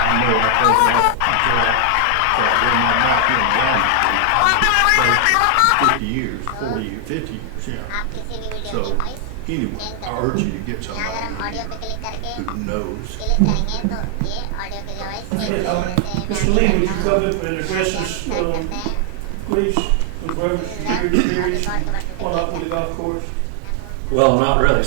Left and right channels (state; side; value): different; both; correlation 0.00